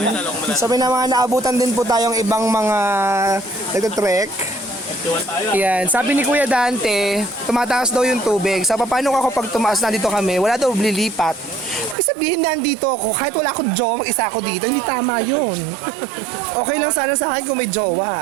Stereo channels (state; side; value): drops out; left; at 12.0 s